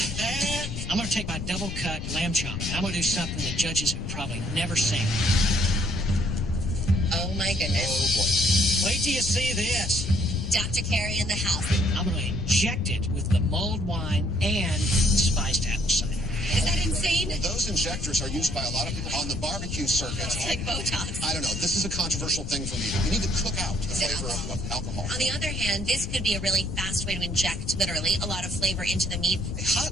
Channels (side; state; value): left; noise; rumble, 5 dB below the sound